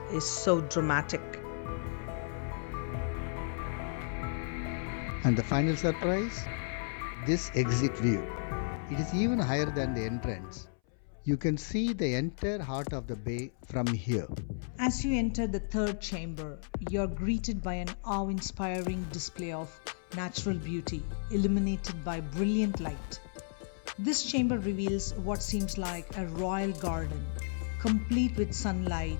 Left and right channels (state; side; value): silent; right; 56 dB below the other